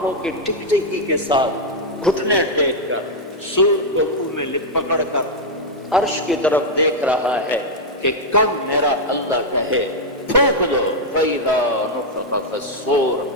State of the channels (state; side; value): normal; both; correlation -0.02